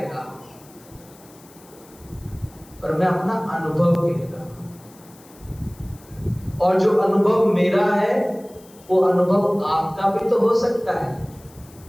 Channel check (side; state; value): left; noise; hiss, 25 dB below the sound